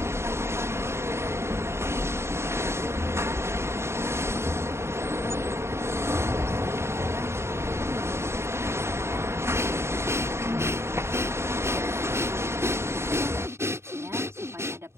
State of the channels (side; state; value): left; late; 0.13 ms